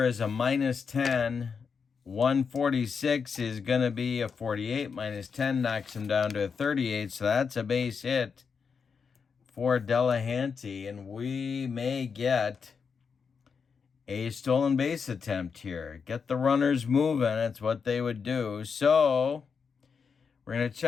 is a -10. 146 is going to be a 48. -10 knocks him down to a 38, so that's a base hit for Delahanty, and we may get a stolen base attempt here. Get the runners moving. That's what they would do. So we're going to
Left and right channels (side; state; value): right; quieter; 5.8 dB